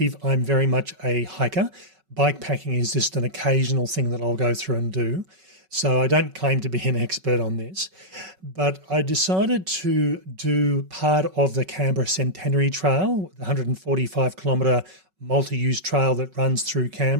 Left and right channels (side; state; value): left; late; 5.3 ms